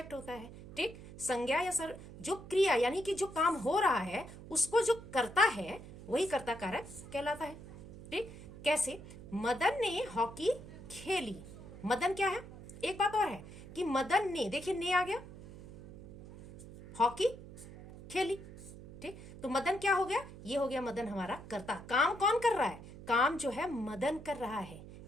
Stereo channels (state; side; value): noise; right; hum, 15 dB below the sound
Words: होता है। ठीक। संज्ञा या जो क्रिया यानी कि जो काम हो रहा है उसको जो करता है, वही कर्ता कारक कहलाता है। ठीक। कैसे? मदन ने हॉकी खेली। मदन क्या है? एक बात और है कि मदन ने, देखिए ने आ गया, हॉकी खेली। ठीक। तो मदन क्या हो गया? ये हो गया मदन हमारा कर्ता। काम कौन कर रहा है? काम जो है मदन कर रहा है।